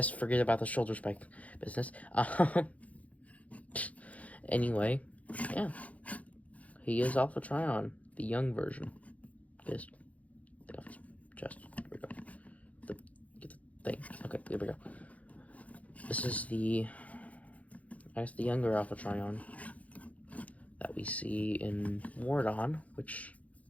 forget about the shoulder spike business. Anyway, yeah. He is Alpha Trion, the young version. Yes. Take off his chest. There we go. Get the thing. Okay, there we go. This is the, I guess, the younger Alpha Trion that we see in Wardon, which,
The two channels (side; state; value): right; late; 0.068 ms